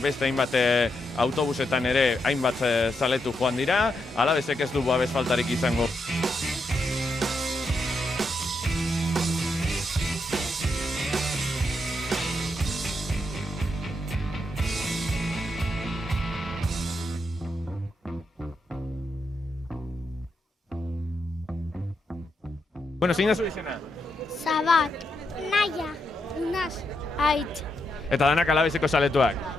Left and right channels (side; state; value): both; normal; correlation 0.82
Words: hainbat autobusetan ere hainbat zaletu joan dira, Alavesek ez du babes faltarik izango. Bueno, zein da zu izena? Zabat, Naia, Unaz, Aitz. Eta danak Alaveseko zaletuak.